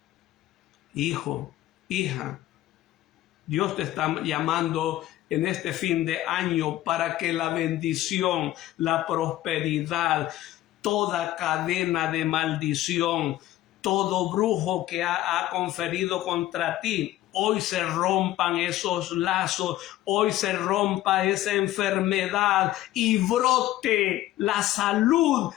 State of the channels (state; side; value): quieter; right; 14.6 dB